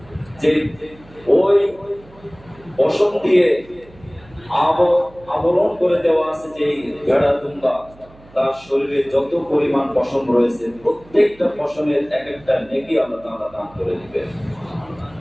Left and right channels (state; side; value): noise; right; hum, 24 dB below the sound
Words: যে ওই পশম দিয়ে আবরণ করে দেওয়া আছে যে ভেড়া, দুম্বা, তার শরীরে যত পরিমাণ পশম রয়েছে প্রত্যেকটা পশমের এক একটা নেকি আল্লাহ তাআলা দান করে দিবেন।